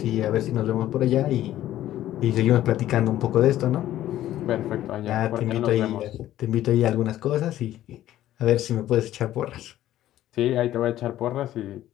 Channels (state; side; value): quieter; right; 13.3 dB